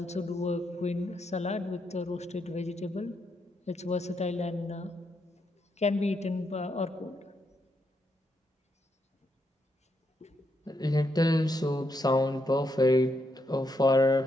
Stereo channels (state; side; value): normal; both; correlation 0.80